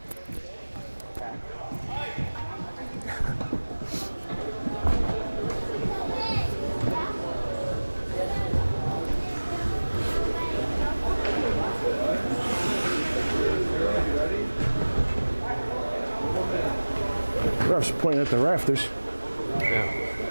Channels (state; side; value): inverted; both; correlation -1.00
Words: Ref's pointing at the rafters.